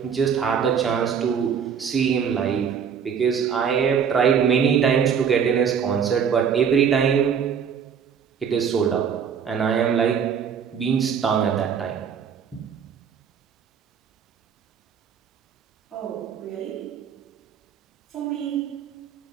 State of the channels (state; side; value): quieter; left; 7.3 dB